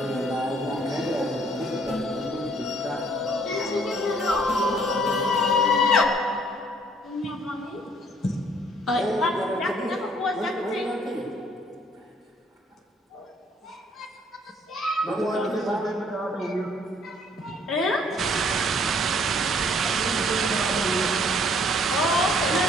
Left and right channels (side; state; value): both; normal; correlation 0.61